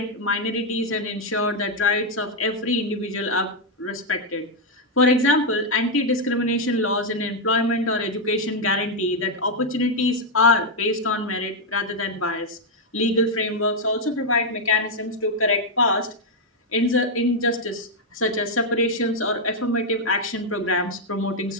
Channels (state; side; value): normal; both; correlation 0.00